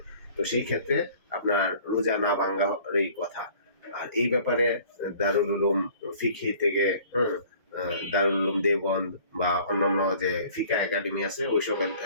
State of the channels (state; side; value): inverted; both; correlation -0.51